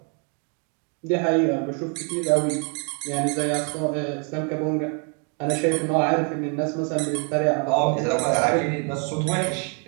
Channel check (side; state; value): left; quieter; 38.3 dB